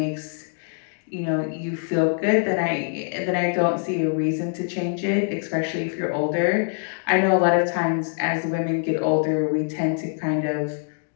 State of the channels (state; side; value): silent; right; 63 dB below the other